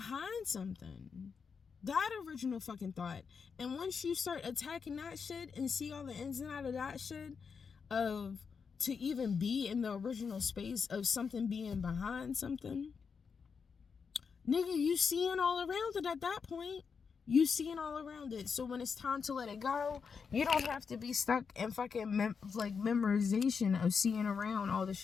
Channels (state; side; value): quieter; right; 5.8 dB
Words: something. That original fucking thought. And once you start attacking that shit and see all the ins and outs of that shit, of to even be in the original space of something being behind something, nigga, you seeing all around it at that point. You seeing all around it. So when it's time to let it go, you don't have to be stuck in fucking memorization of seeing around all the